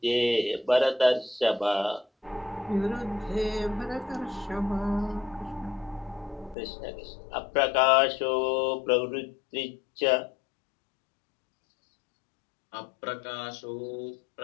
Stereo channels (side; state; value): right; drops out; at 6.6 s